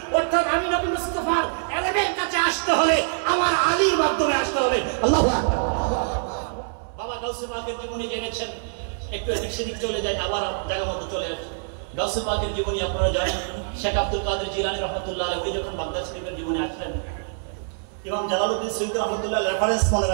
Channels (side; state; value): left; silent; 62 dB below the other